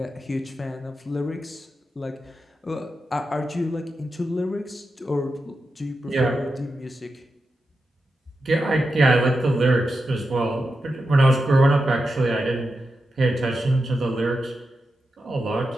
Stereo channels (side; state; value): both; normal; correlation 0.89